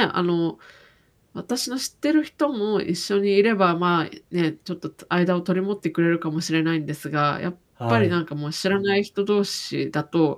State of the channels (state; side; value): identical; both; correlation 1.00